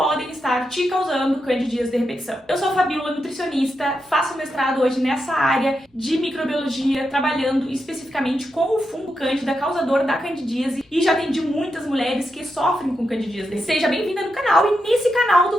estar te causando candidíase de repetição. Eu sou a Fabíola, nutricionista, faço mestrado hoje nessa área de microbiologia, trabalhando especificamente com o fungo cândida, causador da candidíase, e já atendi muitas mulheres que sofrem com candidíase. Seja bem-vinda no canal, e nesse canal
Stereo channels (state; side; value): normal; both; correlation 0.86